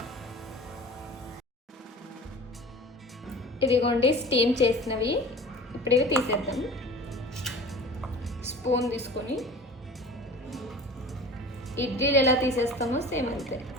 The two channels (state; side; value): normal; both; correlation 0.41